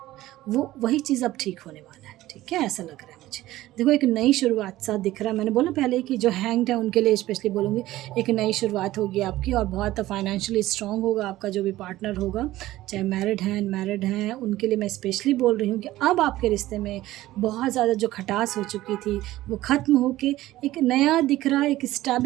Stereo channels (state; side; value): quieter; left; 16.0 dB